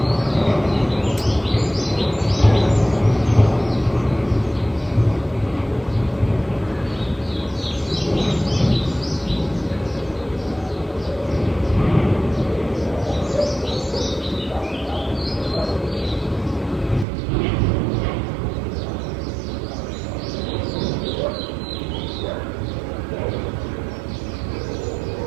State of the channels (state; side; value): drops out; left; at 17.1 s